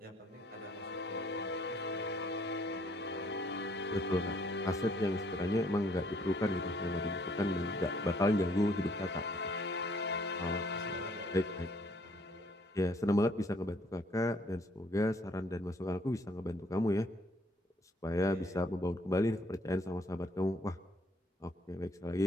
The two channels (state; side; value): normal; both; correlation 0.64